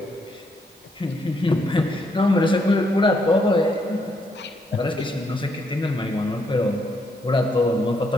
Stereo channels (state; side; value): normal; both; correlation 0.75